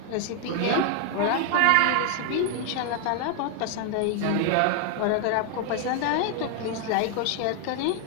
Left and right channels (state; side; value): different; both; correlation 0.00